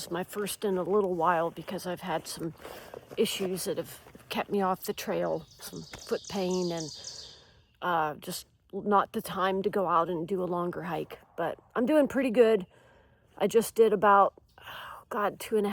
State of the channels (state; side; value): identical; both; correlation 1.00